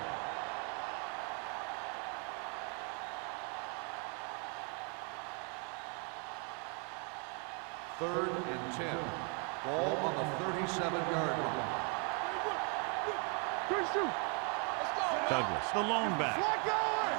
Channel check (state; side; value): quieter; left; 37.2 dB